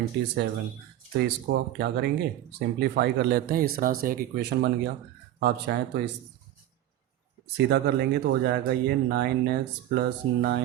तो इसको आप क्या करेंगे, सिंप्लीफाई कर लेते हैं। इस तरह से एक इक्वेशन बन गया। आप चाहें तो इस सीधा कर लेंगे तो हो जाएगा ये 9x plus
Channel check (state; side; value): quieter; left; 13.1 dB